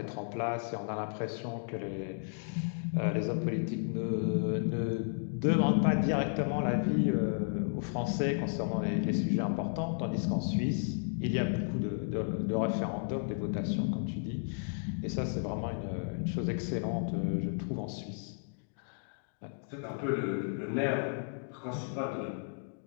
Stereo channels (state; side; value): silent; right; digital silence